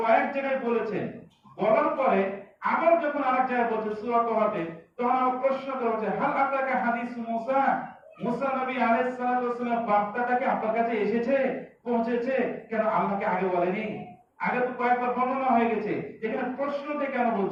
জায়গায় বলেছেন। বলার পরে আবার যখন আরেক জায়গায় বলছে সূরা তাওবাতে, তখন আবার প্রশ্ন করা হচ্ছে, হাল আতাকা হাদিসু মুসা, মুসা নবী আলাইহিস সালাতু ওয়াস সালাম বার্তাটা কি আপনার কাছে এসেছে, পৌঁছেছে? কেন আল্লাহকে আগে বলেনি? আগে তো কয়েকবার বর্ণনা হয়ে গেছে, এখানে প্রশ্নতে কেন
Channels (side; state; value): both; identical; correlation 1.00